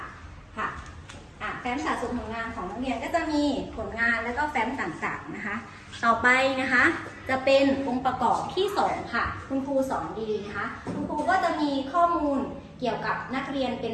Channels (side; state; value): both; identical; correlation 1.00